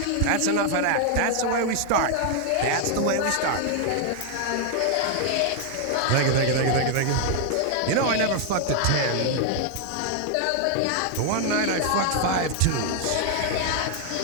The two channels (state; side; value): different; both; correlation 0.00